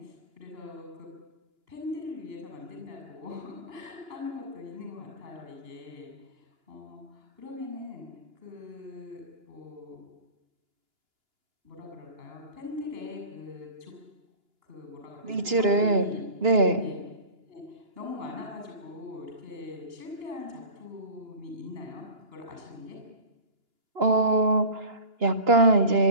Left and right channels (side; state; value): left; late; 2.9 ms